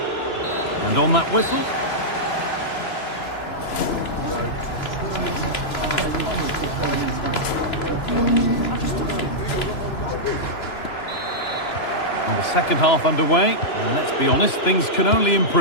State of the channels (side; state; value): right; late; 2.9 ms